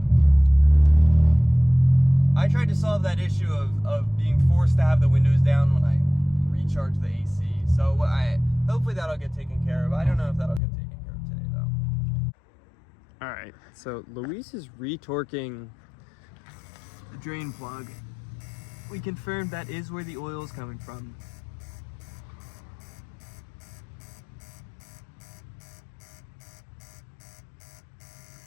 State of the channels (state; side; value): drops out; right; at 10.6 s